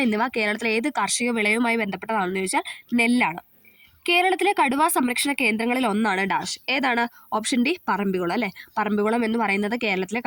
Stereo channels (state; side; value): identical; both; correlation 1.00